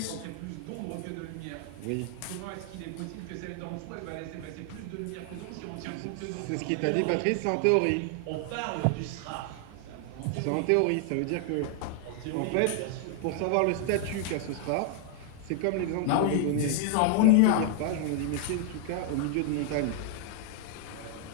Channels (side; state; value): both; different; correlation 0.00